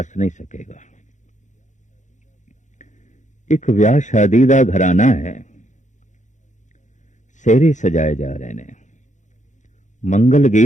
नहीं सकेगा। एक विआह शादी का घराना है, सेहरे सजाए जा रहे ने, मंगल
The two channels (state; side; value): late; right; 0.35 ms